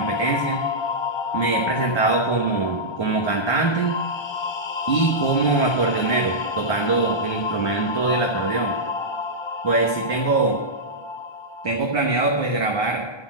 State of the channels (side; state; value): right; late; 1.2 ms